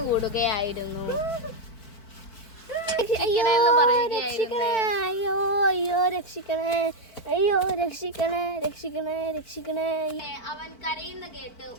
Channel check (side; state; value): right; late; 4.5 ms